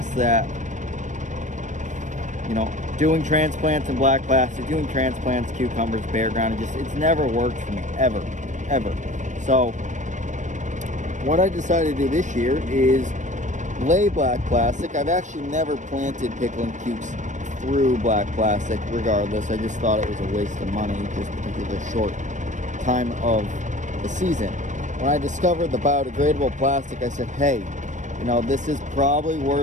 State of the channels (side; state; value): left; late; 0.35 ms